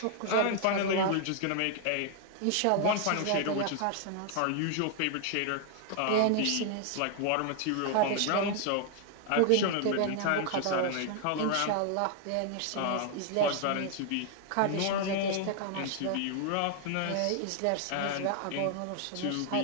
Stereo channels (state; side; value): different; both; correlation 0.00